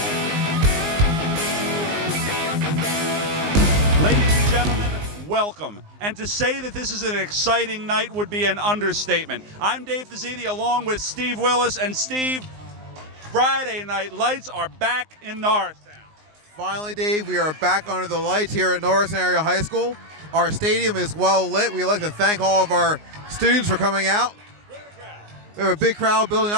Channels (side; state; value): left; late; 19 ms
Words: and gentlemen, welcome. And to say that this is an exciting night would be an understatement. I'm Dave Fazzini along with Steve Willis. And Steve, Friday night lights are back in Norristown. Finally, Dave, we are back under the lights here at Norristown Area High School. Our stadium is well lit. We'd like to thank all of our students for coming out. We have a big crowd building